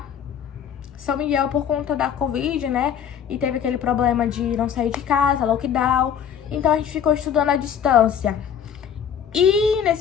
São Miguel por conta da Covid, né? E teve aquele problema de não sair de casa, lockdown. Então a gente ficou estudando à distância. E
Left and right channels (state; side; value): quieter; right; 8.3 dB